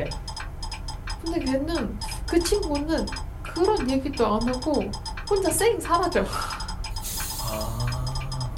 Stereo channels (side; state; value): both; identical; correlation 1.00